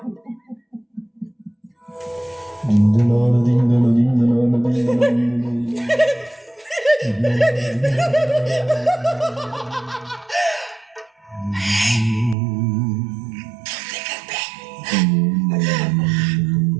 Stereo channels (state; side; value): drops out; left; at 12.4 s